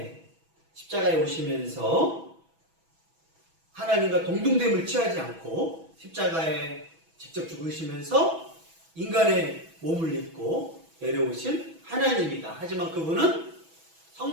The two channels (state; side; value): late; left; 6.1 ms